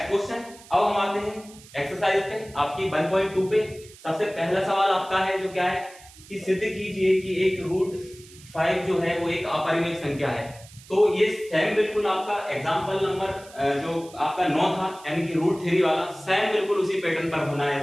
question, अब हम आते हैं एक्सरसाइज पे आपकी 1.2 पे। सबसे पहला सवाल आपका है जो क्या है कि सिद्ध कीजिए कि एक रूट 5 जो है वो एक अपरिमेय संख्या है। तो ये सेम बिल्कुल आपका एग्जांपल नंबर जो आपका 9 था यानी कि रूट 3 वाला, सेम बिल्कुल उसी पैटर्न पर होना है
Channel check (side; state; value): right; noise; hiss, 21 dB below the sound